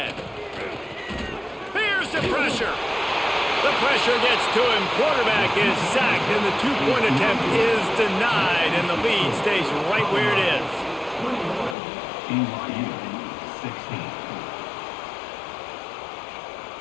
Here's the pressure. The pressure gets to him. Quarterback is sacked, and the 2-point attempt is denied, and the lead stays right where it is. BYU 16.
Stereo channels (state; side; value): drops out; right; at 11.8 s